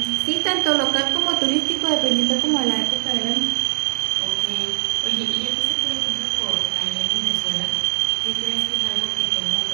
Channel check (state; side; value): quieter; left; 32.3 dB